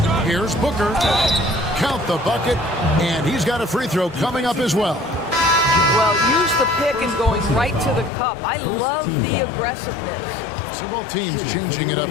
Here's Booker. Count the bucket, and he's got a free throw coming up as well. Well, use the pick and going right to the cup. I love the aggressiveness. So both teams changing it up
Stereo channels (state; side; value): drops out; right; at 8.1 s